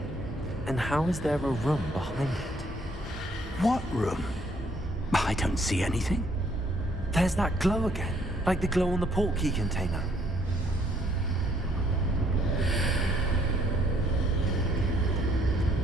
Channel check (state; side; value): normal; both; correlation 0.66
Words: And how is there a room behind it? What room? I don't see anything. There's that glow again, like the glow on the portkey container.